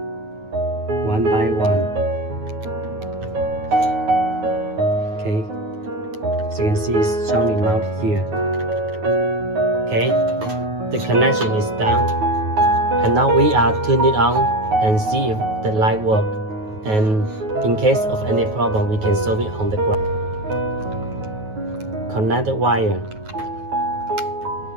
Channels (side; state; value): left; late; 9.4 ms